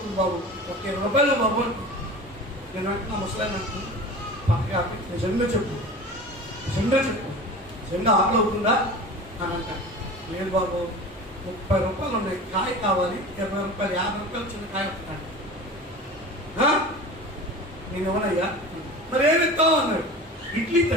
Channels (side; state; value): both; normal; correlation 0.35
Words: బాబు, ఒక 20 రూపాయలు బాబు అంటు. నేను అంటున్నా ముసలాన్ని అంటున్నా, పక్కగా నిజంగా చెప్పు, నిజంగా ఆకలి అవుతుందా అని అంటాను. లేదు బాబు 30 రూపాయలు ఉన్నాయి, కాయ కావాలి, 20 రూపాయలు, 50 రూపాయలు చిన్న కాయ వస్తున్నాడు. నేను ఎవరయ్యా, మరి ఏమి ఇస్తావు అన్నాడు. ఇడ్లీ